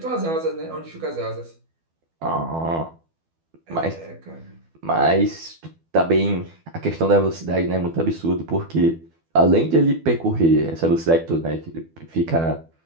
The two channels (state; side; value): late; left; 12 ms